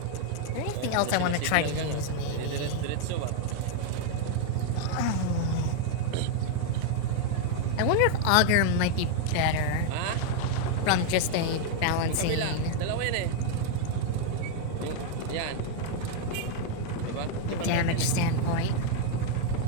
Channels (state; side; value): different; both; correlation 0.00